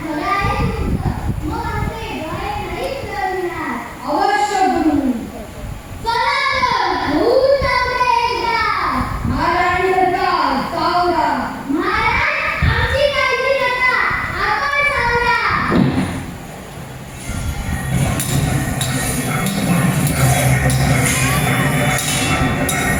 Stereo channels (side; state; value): both; identical; correlation 1.00